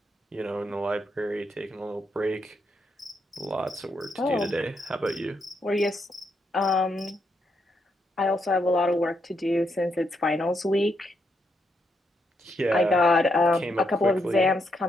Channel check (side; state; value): both; normal; correlation 0.79